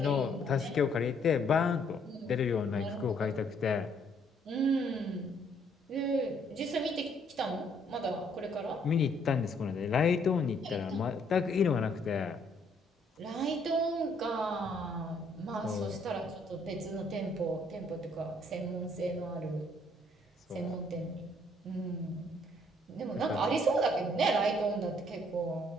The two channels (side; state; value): both; normal; correlation 0.66